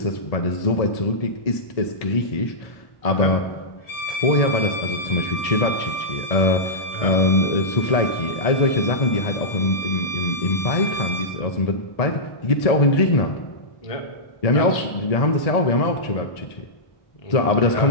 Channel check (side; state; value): right; late; 1.8 ms